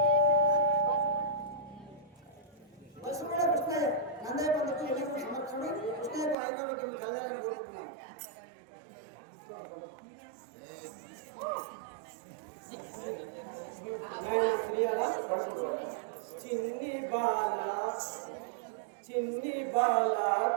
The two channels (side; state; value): left; drops out; at 6.4 s